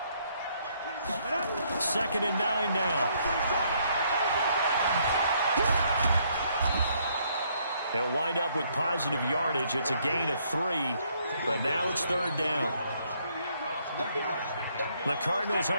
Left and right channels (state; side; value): inverted; both; correlation -0.69